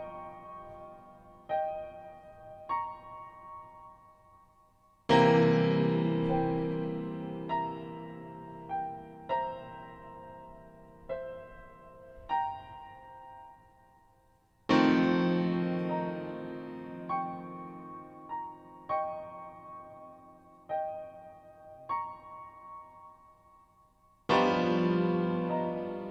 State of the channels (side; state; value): both; identical; correlation 1.00